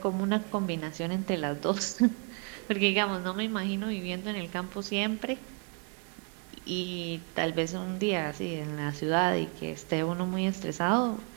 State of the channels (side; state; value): left; quieter; 39.0 dB